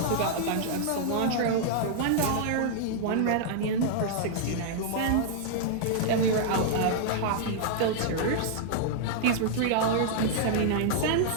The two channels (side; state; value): both; different; correlation -0.01